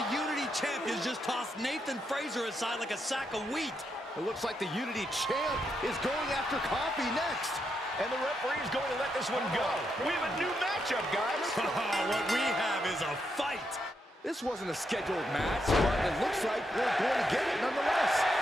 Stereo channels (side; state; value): both; normal; correlation 0.81